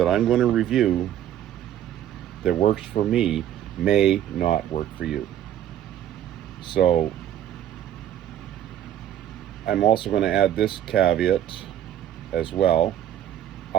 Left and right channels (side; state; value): left; quieter; 11.2 dB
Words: I'm going to review that works for me may not work for you. So I'm also going to add this caveat as well.